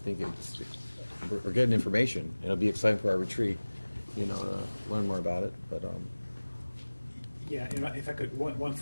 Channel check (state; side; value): inverted; both; correlation -1.00